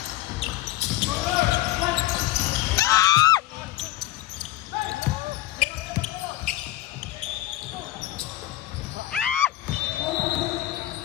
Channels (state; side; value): quieter; right; 15.1 dB